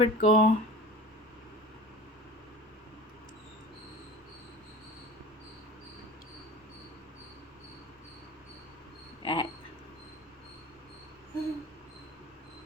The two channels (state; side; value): normal; both; correlation 0.37